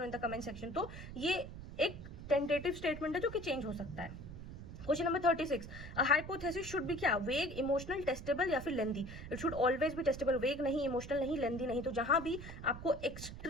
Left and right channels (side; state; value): right; noise; rumble, 11 dB below the sound